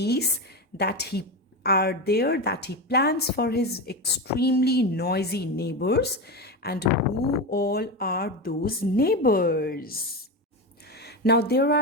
that he plans for his extremely noisy neighbors, and who all are those neighbors. Now there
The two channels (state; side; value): normal; both; correlation 0.18